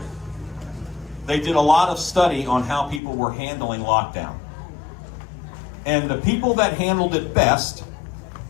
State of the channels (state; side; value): drops out; right; at 3.0 s